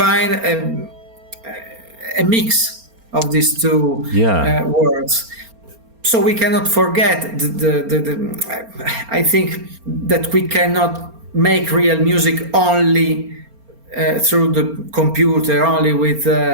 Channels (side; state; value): left; late; 4.3 ms